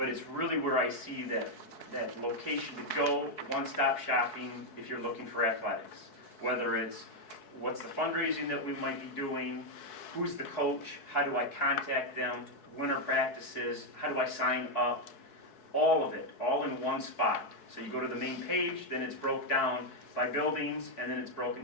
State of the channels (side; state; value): right; late; 4.6 ms